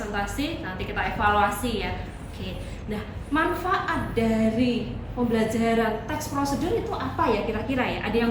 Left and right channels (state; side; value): identical; both; correlation 1.00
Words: nanti kita evaluasi ya. Oke. Nah, manfaat dari pembelajaran teks prosedur itu apa ya kira-kira ya? Ada